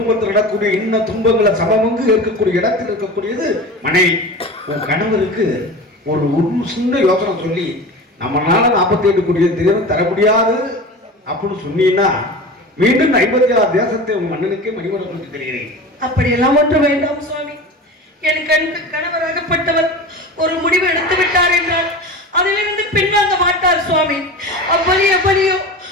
நடக்கூடிய இன்ன துன்பங்களை சமமங்கு இருக்கக்கூடிய இடத்தில் இருக்கக்கூடியது மனைவி. உன் கணவருக்கு ஒரு சின்ன யோசனை சொல்லி நம்மளால 48 கோடி தினம் தர முடியாது அப்படின்னு சொன்னீங்கன்னா மீண்டும் 56 தேசத்தை உன் மன்னனுக்கே மணிமடம் கொடுத்து தருகிறேன். அப்படியெல்லாம் ஒன்று வேண்டாம் சுவாமி. என் கணவராகப்பட்டவர் ஒரு முடிவு எடுத்து விட்டார் என்றால் அதிலிருந்து பின்வாங்க மாட்டார் சுவாமி.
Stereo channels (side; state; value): both; normal; correlation 0.32